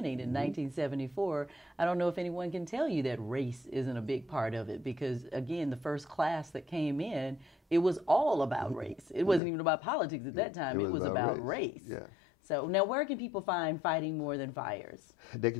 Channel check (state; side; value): drops out; right; at 9.4 s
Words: in 1974, I don't know if anyone can tell you that race isn't a big part of it, because, again, the first class that came in, it was all about race. It wasn't even about politics at that time. It was about race. Yeah. So now where can people find Fighting More Than Fires? They